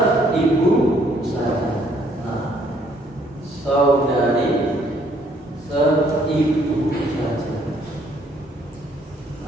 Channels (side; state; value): both; normal; correlation 0.65